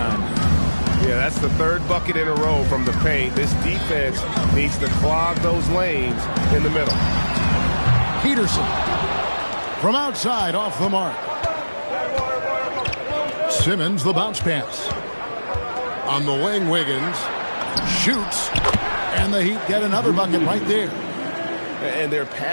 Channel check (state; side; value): inverted; both; correlation -1.00